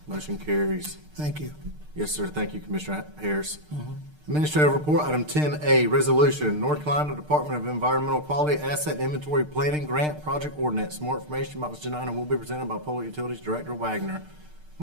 Motion carries. Thank you. Yes, sir. Thank you, Commissioner Harris. Administrative report, item 10A, resolution, North Carolina Department of Environmental Quality Asset Inventory Planning Grant Project Ordinance. More information about this agenda item will be presented by Public Utilities Director Wagner.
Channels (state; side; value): late; left; 6.6 ms